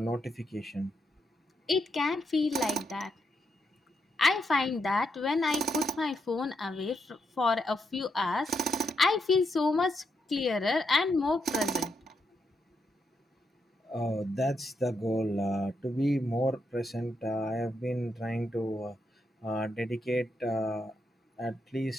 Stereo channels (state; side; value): normal; both; correlation 0.81